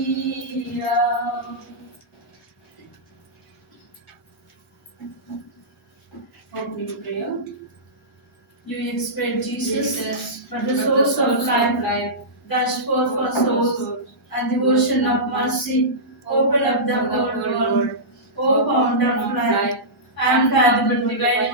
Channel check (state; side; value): normal; both; correlation -0.16